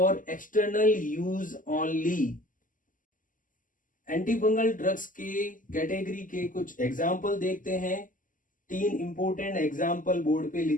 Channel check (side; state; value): right; late; 0.38 ms